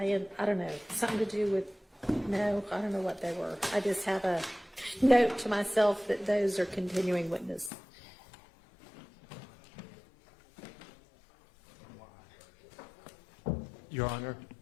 I don't know, something to do with, no, I don't know what they were. I just have a note to myself that those are continuing witness. Your Honor,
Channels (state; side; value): drops out; right; at 7.7 s